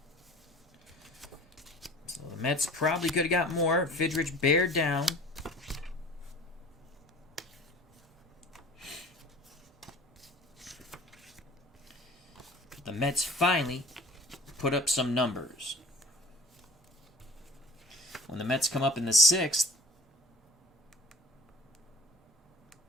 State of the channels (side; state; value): both; normal; correlation 0.46